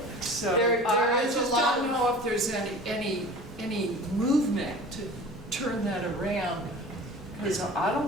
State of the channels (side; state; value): both; normal; correlation 0.40